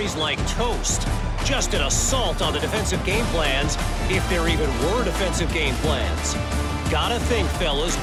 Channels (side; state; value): both; identical; correlation 1.00